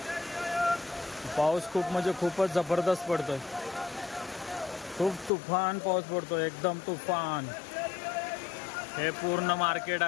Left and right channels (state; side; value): drops out; right; at 5.3 s